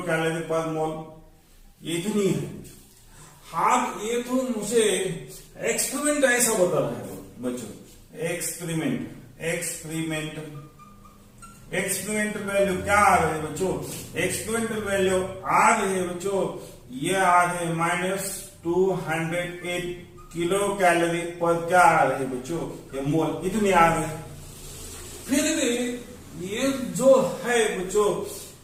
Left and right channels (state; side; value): identical; both; correlation 1.00